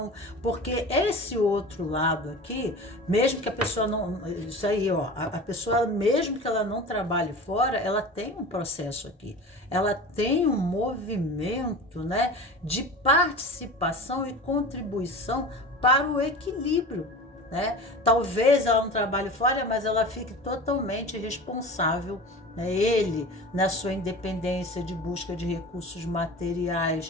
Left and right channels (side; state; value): both; normal; correlation 0.34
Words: porque esse outro lado aqui, mesmo que a pessoa não, isso aí, ó, a pessoa, mesmo que ela não trabalhe fora, ela tem um processo aqui, ela tem um movimento, né, de participação e contribuição para o equilíbrio, né? Talvez ela não trabalhe fora, mas ela fique totalmente responsável, né? Ele, na sua independência de busca de recursos